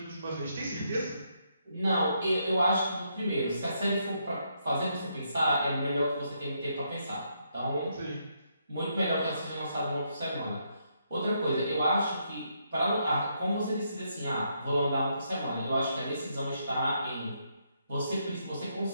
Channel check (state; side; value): inverted; both; correlation -0.76